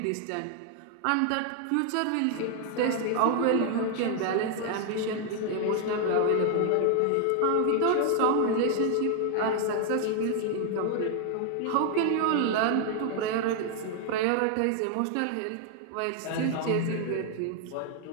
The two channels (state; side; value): different; both; correlation 0.00